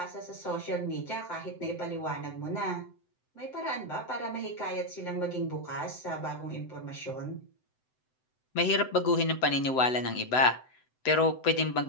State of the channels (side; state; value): right; late; 7.8 ms